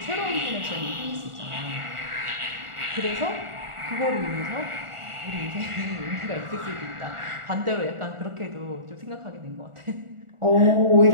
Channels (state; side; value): late; left; 1.4 ms